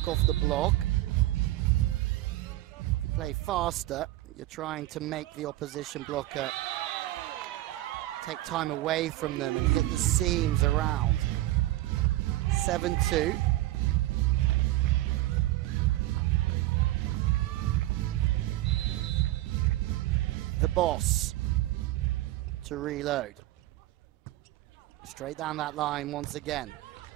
off the block. If you play faster, you're trying to make the opposition blocker take time away from them and hit the seams around. 7-2. The boss to reload. Straight down that line once again.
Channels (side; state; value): left; quieter; 16.6 dB